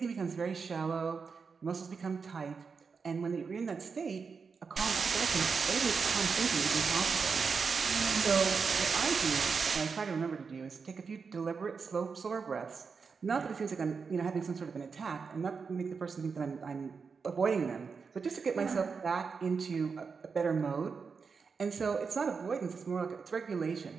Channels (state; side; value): quieter; left; 5.3 dB